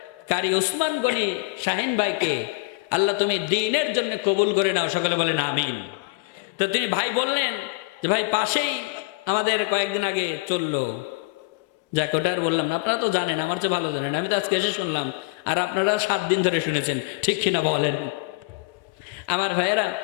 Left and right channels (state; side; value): quieter; right; 26.7 dB